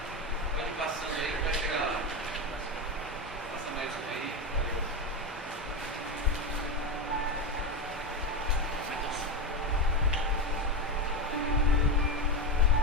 passando aí, vai chegar lá. Passa mais um aí.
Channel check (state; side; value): normal; both; correlation 0.15